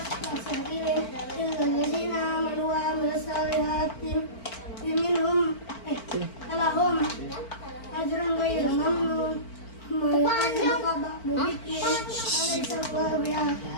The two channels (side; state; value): right; late; 4.5 ms